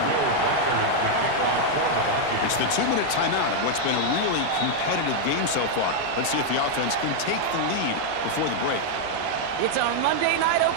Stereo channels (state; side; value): different; both; correlation 0.00